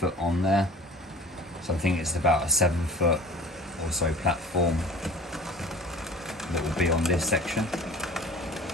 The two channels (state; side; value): normal; both; correlation 0.44